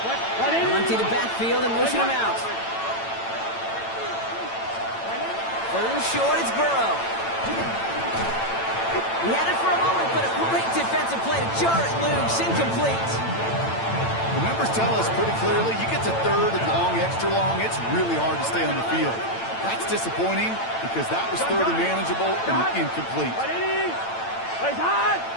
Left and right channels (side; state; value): right; late; 8.9 ms